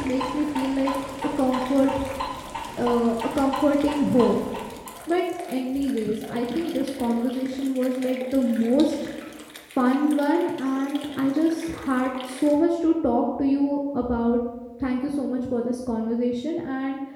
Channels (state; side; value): identical; both; correlation 1.00